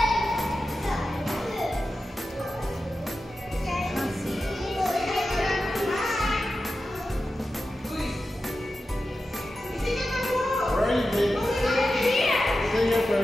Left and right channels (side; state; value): both; normal; correlation 0.92